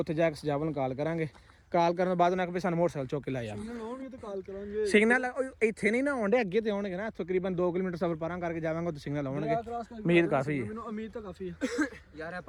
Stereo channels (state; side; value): identical; both; correlation 1.00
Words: ਜਾ ਕੇ ਸਜਾਵਲ ਨੂੰ ਕਾਲ ਕਰਾਂਗੇ ਕਾਲ ਕਰਨ ਤੋਂ ਬਾਅਦ ਉਹਨਾਂ ਕਿ ਸਾਨੂੰ ਮੋਟਰਸਾਈਕਲ ਚੁੱਕ ਕੇ ਲੈ ਜਾ ਲਾਉਣਗੇ ਤੇ ਕਾਲ ਕਰਾਂਗੇ ਸਿਗਨਲ ਇੱਥੇ ਨਹੀਂ ਨਾ ਆਉਂਦੇ ਅੱਗੇ ਤੇ ਆਉਣਗੇ ਨਾ ਤਕਰੀਬਨ 2 ਕਿਲੋਮੀਟਰ ਸਫ਼ਰ ਪਾਰਾਂ ਕਰਕੇ ਜਾਵਾਂਗੇ ਤੇ ਸਿਗਨਲ ਆਉਣਗੇ ਉਮੀਦ ਕਾਫੀ ਹੈ ਮੈਨੂੰ ਉਮੀਦ ਤਾਂ ਕਾਫੀ ਹੈ ਯਾਰ ਇਹ